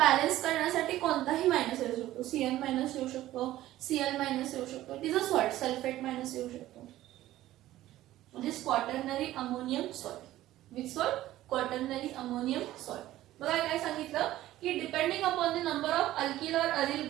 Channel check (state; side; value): quieter; left; 14.8 dB